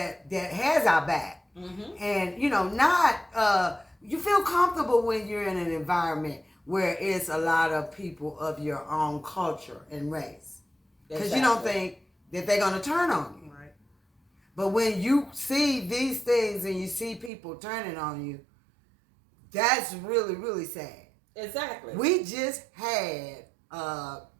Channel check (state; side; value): drops out; left; at 17.3 s